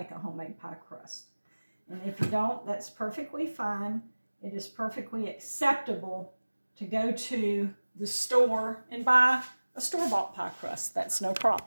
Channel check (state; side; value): inverted; both; correlation -1.00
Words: a homemade pie crust. And if you don't, that's perfectly fine. It is perfectly acceptable to go to the store and buy a store-bought pie crust. That's no